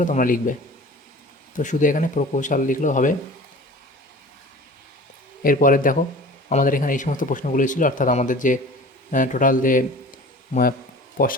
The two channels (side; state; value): both; normal; correlation 0.42